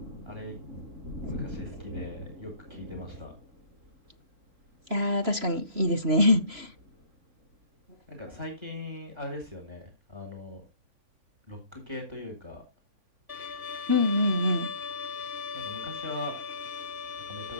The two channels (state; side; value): late; left; 3.0 ms